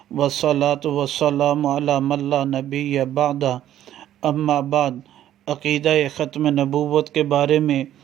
والصلاة والسلام علی من لا نبی بعدہ اما بعد عقیدہ ختم نبوت کے بارے میں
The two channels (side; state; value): left; quieter; 11.9 dB